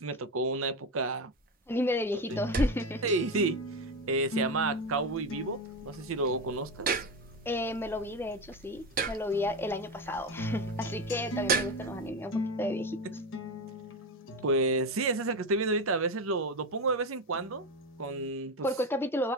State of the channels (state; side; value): normal; both; correlation 0.18